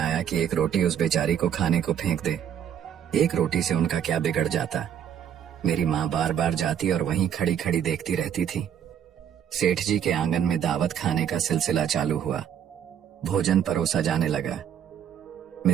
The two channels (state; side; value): quieter; left; 9.1 dB